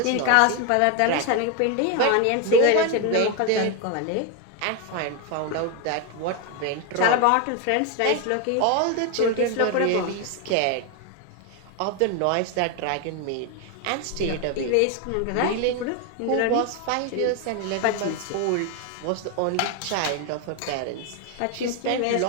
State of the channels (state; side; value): different; both; correlation 0.01